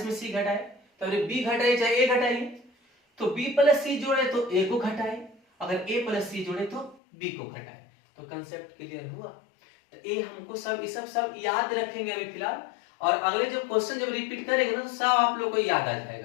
में सी घटाए, तो बी घटाइए चाहे ए घटाइए, तो b प्लस सी जोड़े तो a को घटाए, अगर a प्लस सी जोड़े तो b को घटाए। तो कंसेप्ट क्लियर हुआ। तो ये हमको सब याद रखेंगे अभी फिलहाल, और अगले जब क्वेश्चन जब रिपीट करेंगे ना तो सब आप लोग को याद आ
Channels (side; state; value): right; drops out; at 7.0 s